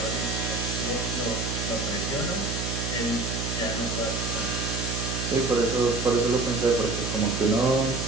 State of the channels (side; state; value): right; noise; hum, 3 dB below the sound